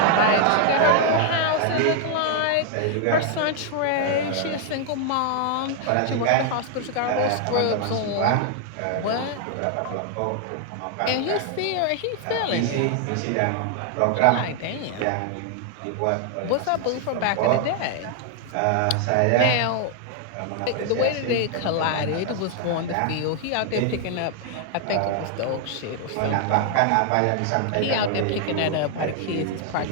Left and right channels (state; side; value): different; both; correlation 0.00